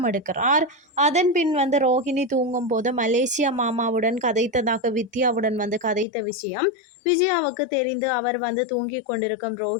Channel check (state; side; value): drops out; right; at 6.1 s